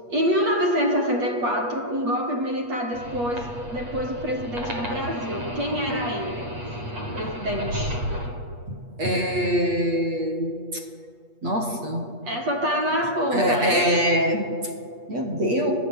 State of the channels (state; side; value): late; left; 8.4 ms